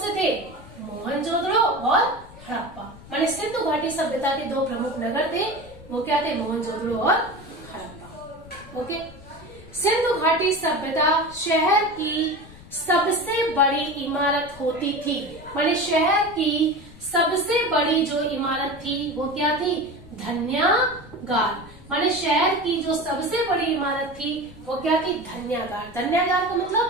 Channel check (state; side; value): noise; left; rumble, 19 dB below the sound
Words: थे? मोहनजोदड़ो और हड़प्पा। माने सिंधु घाटी सभ्यता के दो प्रमुख नगर थे, वो क्या थे? मोहनजोदड़ो और हड़प्पा। ओके। सिंधु घाटी सभ्यता शहर की सबसे बड़ी इमारत होती थी, माने शहर की सबसे बड़ी जो इमारत थी वो क्या थी? धन्यागार। माने शहर की जो सबसे बड़ी इमारत थी वो क्या थी? धन्यागार। धन्यागार का